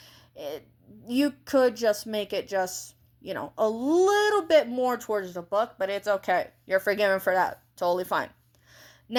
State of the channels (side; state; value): both; identical; correlation 1.00